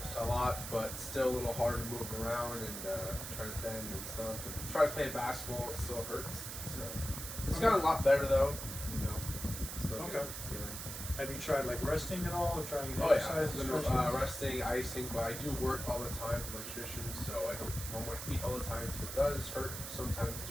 a lot, but still a little hard to move around and try to bend and stuff. And try to play basketball, it still hurts. So it's gotten a lot better though, you know. Still Okay. Good. Have you tried like resting at all or trying to Oh exercise? yeah, resting, icing, but I do work all the time for electrician, so I don't run my feet all the time, so it does hurt sometimes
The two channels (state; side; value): noise; right; hiss, 7 dB below the sound